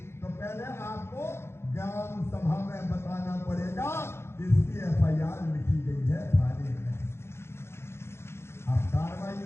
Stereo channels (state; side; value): late; right; 0.12 ms